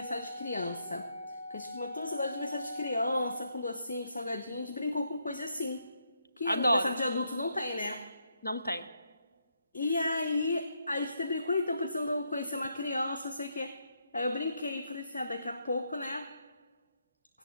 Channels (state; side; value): inverted; both; correlation -0.78